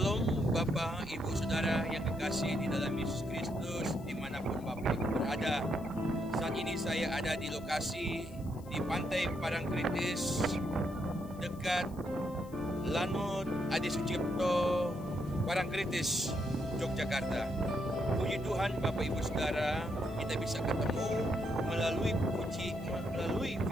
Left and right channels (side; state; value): left; noise; hiss, 24 dB below the sound